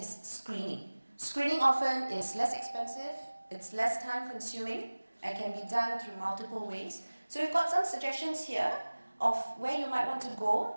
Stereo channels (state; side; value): inverted; both; correlation -1.00